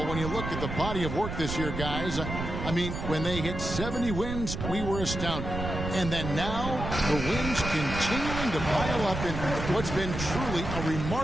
when you look at the body of work this year, guys. I mean, when they hit 70 wins, we were astounded. And then now, the wins continuing to pile up in what's been truly a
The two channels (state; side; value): noise; right; rumble, 5 dB below the sound